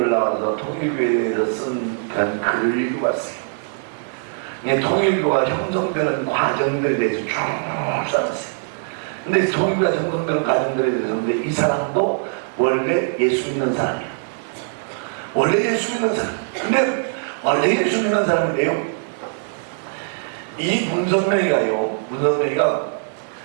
나와서 통일교회에 대해서 쓴 그런 글을 읽어봤어요. 통일교가 형성되는 과정들에 대해서 쭉 써놨어요. 근데 통일교가 형성되는 과정들에 대해서, 근데 이 사람도 원래 예수 믿는 사람이야. 원래 예수 믿는 사람. 근데 원래 예수 믿는 사람인데요, 이 문선명이가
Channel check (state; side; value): silent; left; 65 dB below the other